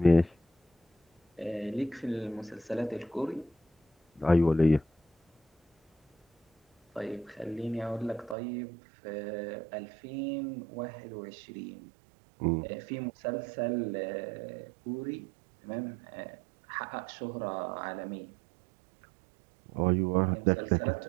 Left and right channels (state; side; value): drops out; left; at 8.3 s